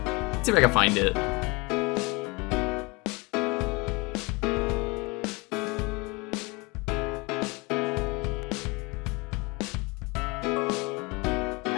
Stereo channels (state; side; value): quieter; right; 26.7 dB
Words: see if I can find it.